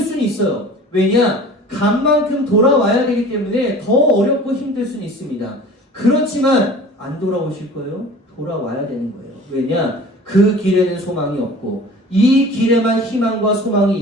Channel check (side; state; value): both; normal; correlation 0.42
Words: 있어요. 왜냐? 간 만큼 돌아와야 되기 때문에 더 어렵고 힘들 수는 있습니다. 그렇지만 안 돌아오실 거예요? 돌아와야 되는 거예요. 왜냐? 그 길에는 소망이 없고 이 길에만 희망과 소망이